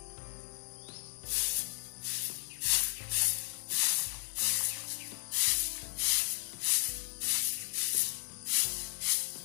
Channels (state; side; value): silent; right; digital silence